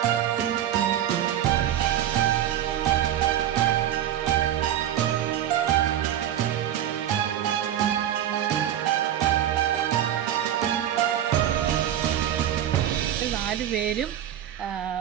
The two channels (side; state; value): left; quieter; 11.1 dB